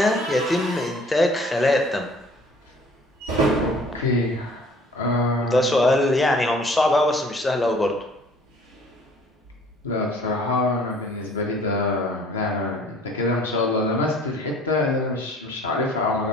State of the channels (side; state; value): both; normal; correlation 0.53